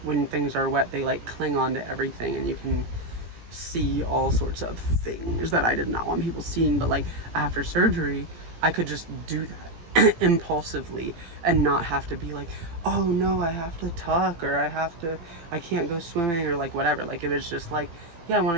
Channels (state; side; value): late; left; 18 ms